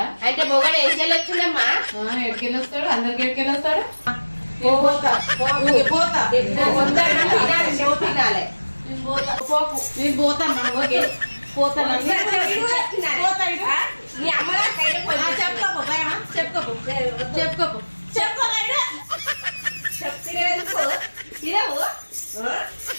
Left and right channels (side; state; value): both; inverted; correlation -1.00